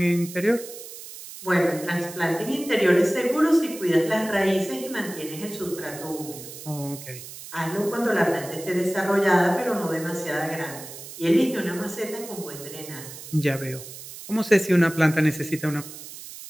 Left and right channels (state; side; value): noise; right; hiss, 13 dB below the sound